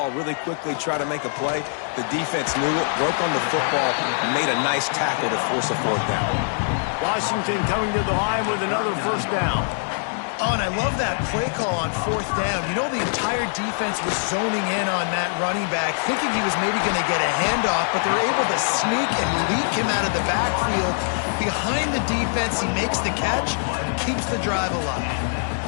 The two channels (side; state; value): right; silent; digital silence